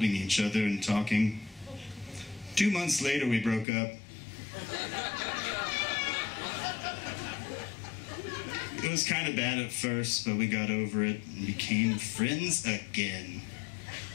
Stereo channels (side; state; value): right; drops out; at 3.7 s